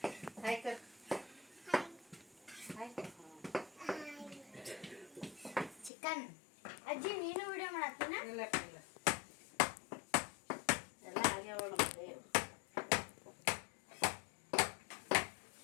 ಚಿಕನ್. ಅಜ್ಜಿ ನೀನು ವಿಡಿಯೋ ಮಾಡತ್ತೀನ? ಇಲ್ಲ ಎಲ್ಲ ಆಗ್ಯಾವ ನಮಗೆ.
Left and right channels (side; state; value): right; drops out; at 5.9 s